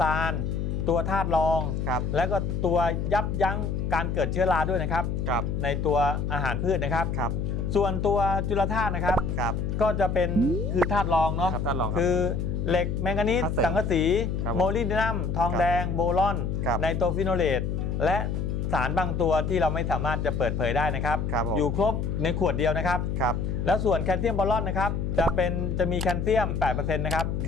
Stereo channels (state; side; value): noise; left; hum, 1 dB below the sound